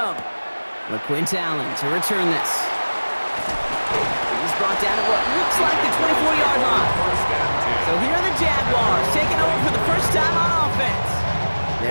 LaQuint Allen to return this. He's brought down at what looks like the 24-yard line. So here are the Jaguars taking over for the first time on offense.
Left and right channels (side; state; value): both; inverted; correlation -1.00